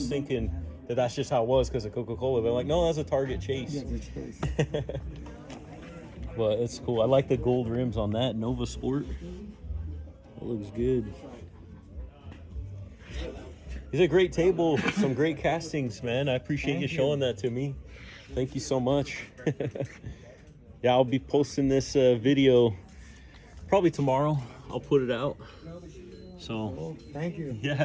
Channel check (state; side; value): identical; both; correlation 1.00